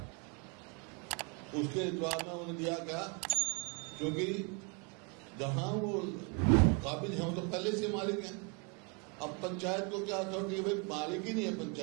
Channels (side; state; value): left; quieter; 35.3 dB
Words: उसके जवाब में उन्होंने दिया क्या, क्योंकि जहां वो काबिल है तो पहले से मालिक हैं। अब पंचायत को क्या अथॉरिटी है, भाई मालिक ही नहीं है